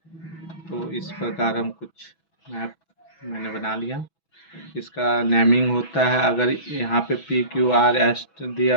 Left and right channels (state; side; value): late; right; 6.1 ms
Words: तो इस प्रकार हम कुछ मैप मैंने बना लिया। इसका नेमिंग होता है, अगर यहाँ पे पी क्यू आर एस दिया